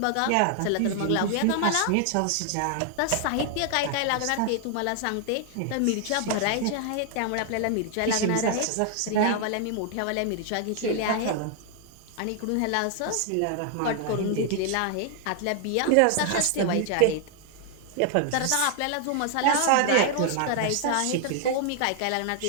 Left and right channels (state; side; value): different; both; correlation 0.00